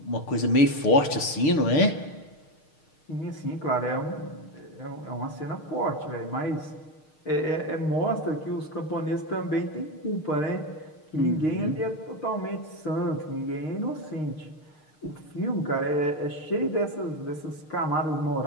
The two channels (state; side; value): late; right; 6.5 ms